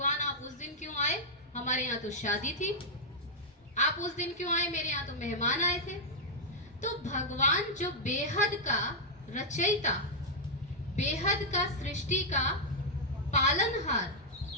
आप उस दिन क्यों आए? हमारे यहाँ तो शादी थी। आप उस दिन क्यों आए? मेरे यहाँ तो मेहमान आए थे। तो भगवान जो बेहद का रचयिता, बेहद का सृष्टि का पालनहार,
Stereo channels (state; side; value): normal; both; correlation -0.06